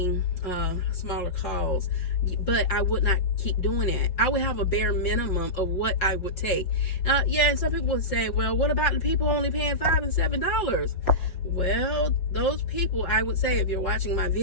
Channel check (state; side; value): late; right; 5.4 ms